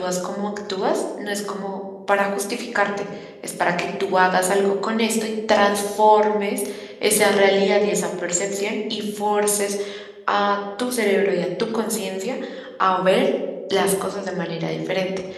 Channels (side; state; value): both; identical; correlation 1.00